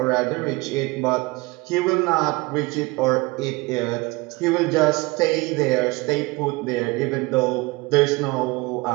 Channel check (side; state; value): left; quieter; 23.9 dB